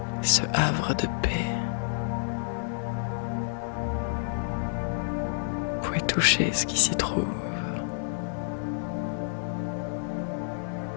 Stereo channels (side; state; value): right; silent; digital silence